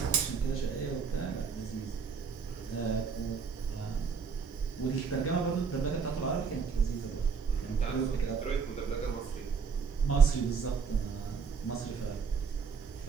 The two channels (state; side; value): quieter; left; 5.8 dB